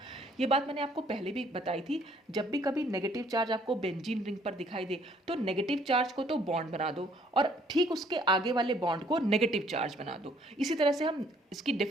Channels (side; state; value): both; normal; correlation 0.62